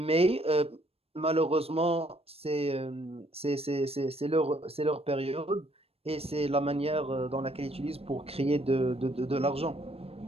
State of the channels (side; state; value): left; late; 0.28 ms